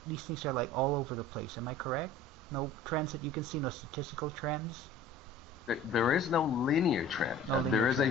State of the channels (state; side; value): normal; both; correlation 0.44